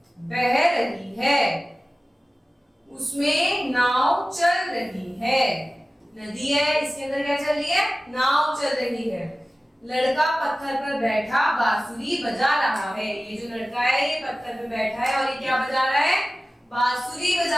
बह रही है, उसमें नाव चल रही है। नदी है, इसके अंदर क्या चल रही है? नाव चल रही है। लड़का पत्थर पर बैठा बांसुरी बजा रहा है। ये जो लड़का है ये पत्थर पर बैठा है और ये क्या बजा रहा है? बांसुरी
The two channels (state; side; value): normal; both; correlation 0.96